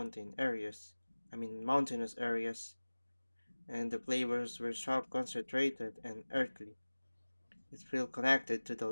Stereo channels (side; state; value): both; inverted; correlation -1.00